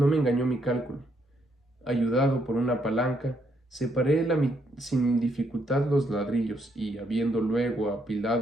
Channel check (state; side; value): normal; both; correlation 0.74